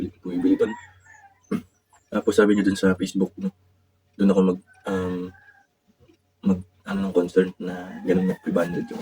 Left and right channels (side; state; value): both; identical; correlation 1.00